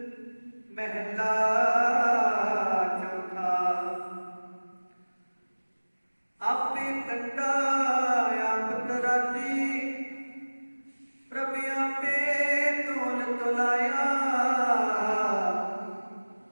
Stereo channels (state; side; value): inverted; both; correlation -1.00